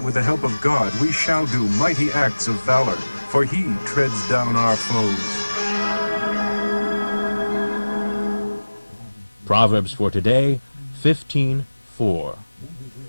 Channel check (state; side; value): inverted; both; correlation -1.00